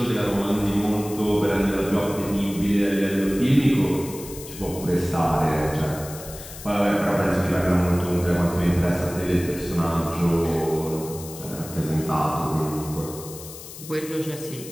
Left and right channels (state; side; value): noise; left; hiss, 14 dB below the sound